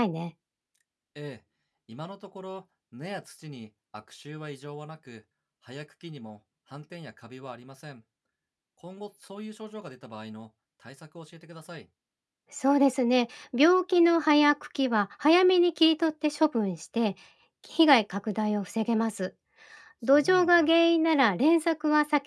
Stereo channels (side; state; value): both; identical; correlation 1.00